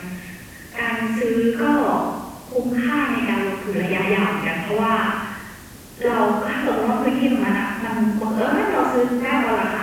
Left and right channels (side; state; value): both; identical; correlation 1.00